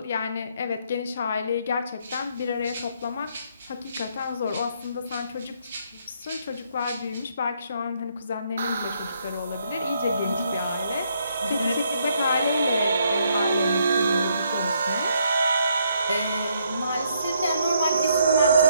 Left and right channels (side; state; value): both; inverted; correlation -0.71